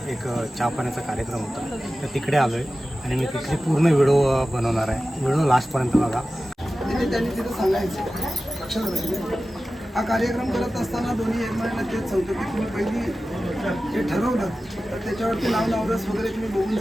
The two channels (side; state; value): both; normal; correlation 0.95